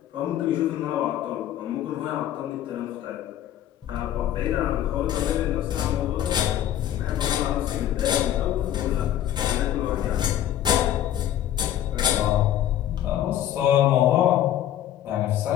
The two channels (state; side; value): quieter; right; 11.7 dB